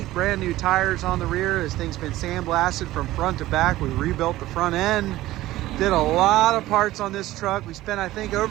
brand new tires on the rear. This thing's been sandblasted from front to back. We rebuilt the front end. Did a lot of parts on this truck. We spent, I think,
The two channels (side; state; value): left; quieter; 16.2 dB